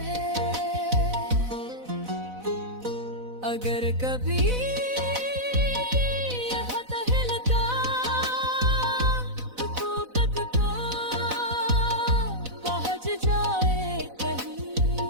है। अगर कभी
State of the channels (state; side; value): late; left; 4.0 ms